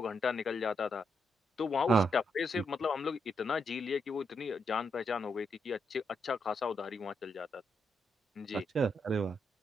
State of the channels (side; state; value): both; normal; correlation 0.79